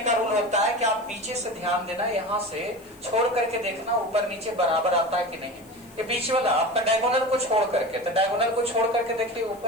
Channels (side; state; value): left; noise; hiss, 26 dB below the sound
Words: का रूल होता है कि आप पीछे से ध्यान देना, यहाँ से छोड़ करके देखना ऊपर नीचे बराबर आता है कि नहीं। ये बीच वाला आपका डायगोनल को छोड़ करके, तो डायगोनल को छोड़ करके देखिए